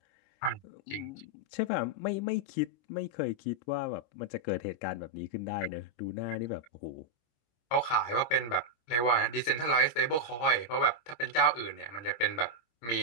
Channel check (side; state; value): right; late; 25 ms